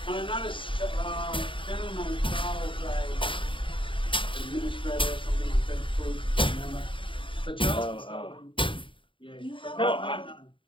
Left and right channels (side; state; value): right; late; 0.25 ms